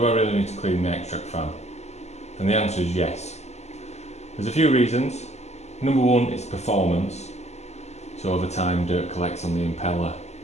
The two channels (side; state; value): right; late; 0.32 ms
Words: I really need to clean the Extractor fan? And the answer is yes. There's a few reasons. Number one is performance. So over time dirt collects on the impeller.